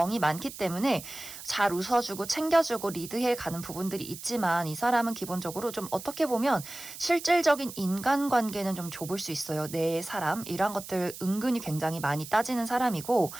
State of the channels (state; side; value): noise; right; hiss, 13 dB below the sound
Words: 많기 때문에 잘 웃어주고 챙겨주고 리드해 가는 부분들이 있지만 이 사람은 기본적으로 좀 어떻게 보면 실질적인 인간관계는 좀 좁을 수 있어요. 내 사람 이런 것들 은근히 굉장히 많이 따지는 사람이고